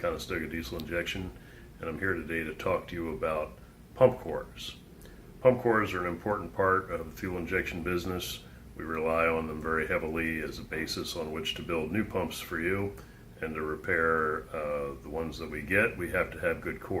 Conestoga Diesel Injection, and I'm here today to talk to you about pump cores. Pump cores are an important part of the fuel injection business. We rely on them very heavily as a basis on which to build new pumps for you, and to repair the ones that we get, we have to have good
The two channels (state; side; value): identical; both; correlation 1.00